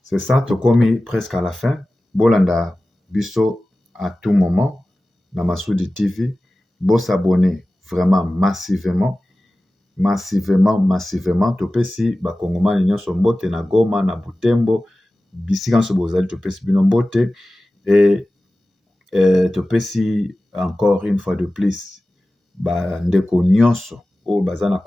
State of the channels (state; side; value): normal; both; correlation 0.96